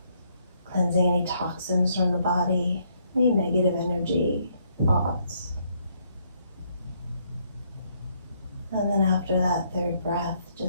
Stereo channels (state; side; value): inverted; both; correlation -0.71